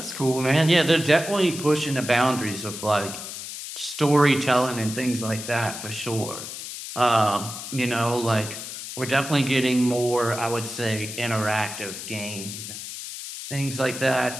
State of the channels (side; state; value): left; noise; hiss, 9 dB below the sound